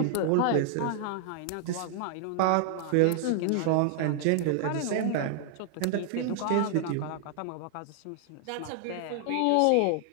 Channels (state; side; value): different; both; correlation 0.00